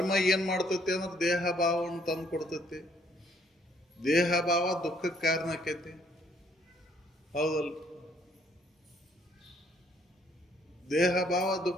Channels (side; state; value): both; normal; correlation 0.66